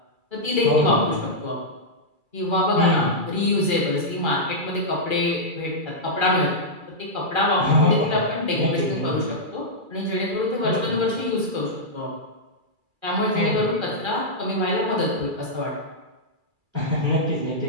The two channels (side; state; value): left; late; 2.3 ms